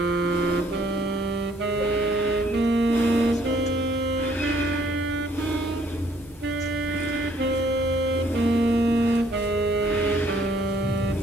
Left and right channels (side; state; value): both; normal; correlation 0.64